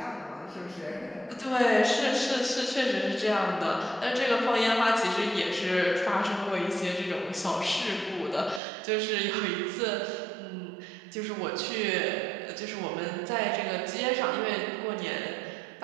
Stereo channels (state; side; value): drops out; left; at 8.6 s